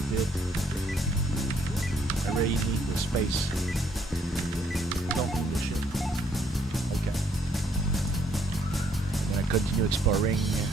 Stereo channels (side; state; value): both; normal; correlation 0.68